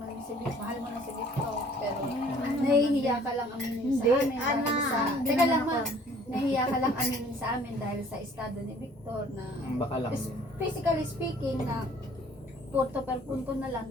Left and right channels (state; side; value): normal; both; correlation 0.55